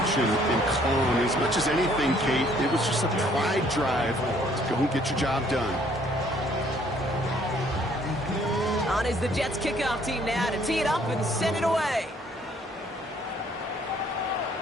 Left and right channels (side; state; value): both; normal; correlation 0.62